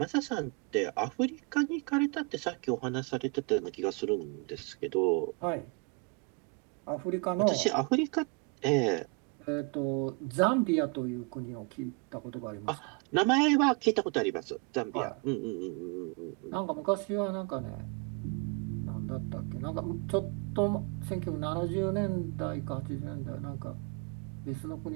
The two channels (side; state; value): left; quieter; 30.5 dB